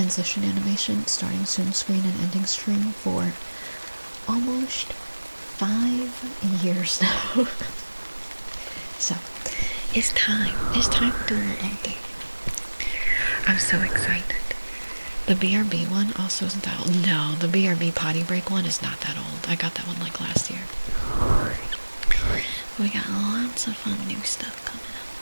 animation, starting soon screen and ending screen for almost 5 years now. So, it's time to do a little update. I'm so excited. The BRB one also isn't that old. No, the BRB potty break one is not that old. I got that one like last year. We got lots of fun new stuff coming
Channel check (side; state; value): both; inverted; correlation -1.00